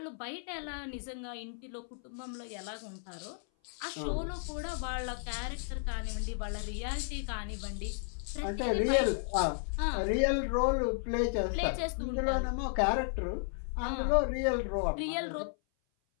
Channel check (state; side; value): silent; right; 55 dB below the other